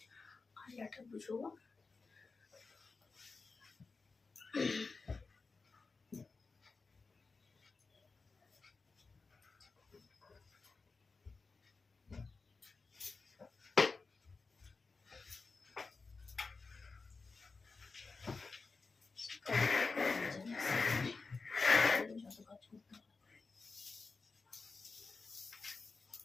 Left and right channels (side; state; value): right; quieter; 4.2 dB